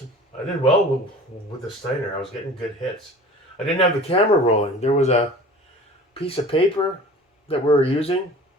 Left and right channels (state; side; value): normal; both; correlation 0.42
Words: did well with the Steiner. I was getting good hits. I didn't have the camera rolling. There was a piece of paper that we were using